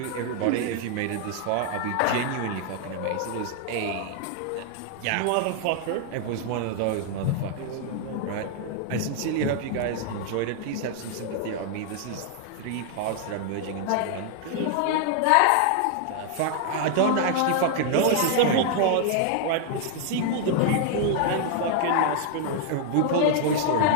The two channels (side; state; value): both; different; correlation 0.00